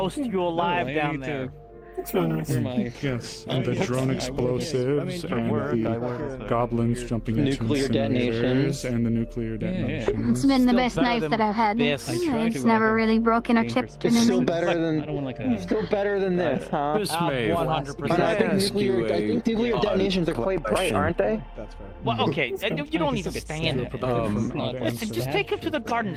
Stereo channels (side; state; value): both; identical; correlation 1.00